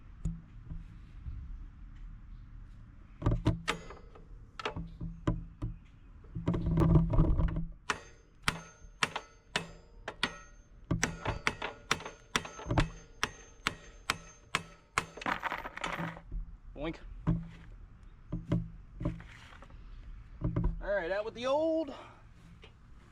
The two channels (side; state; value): both; identical; correlation 1.00